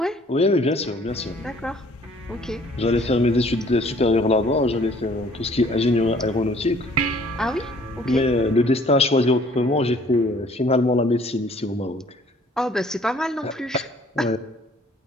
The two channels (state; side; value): normal; both; correlation 0.57